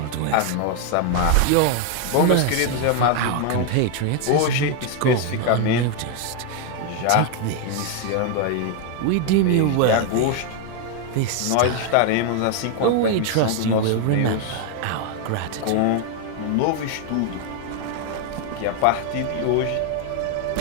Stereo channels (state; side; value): different; both; correlation 0.00